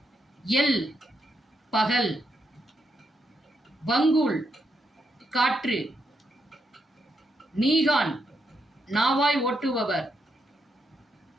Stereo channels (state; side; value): normal; both; correlation 0.81